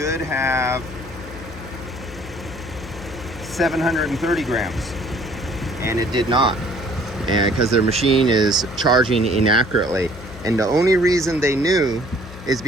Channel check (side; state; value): left; noise; hum, 15 dB below the sound